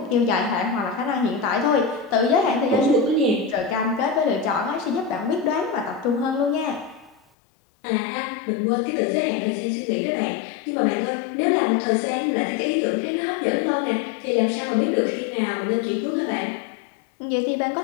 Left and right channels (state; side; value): drops out; right; at 7.2 s